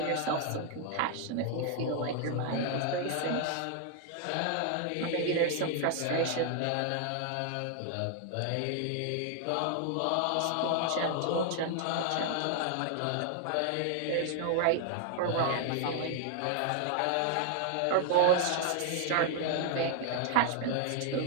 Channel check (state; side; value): different; both; correlation 0.00